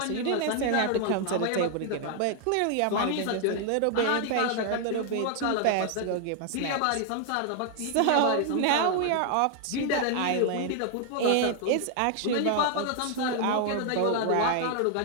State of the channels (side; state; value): both; different; correlation 0.00